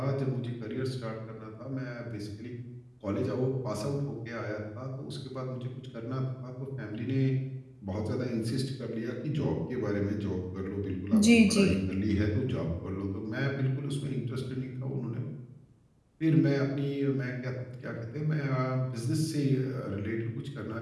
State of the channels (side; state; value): both; identical; correlation 1.00